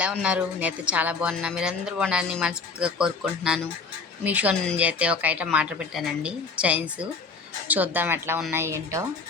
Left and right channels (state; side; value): quieter; right; 4.6 dB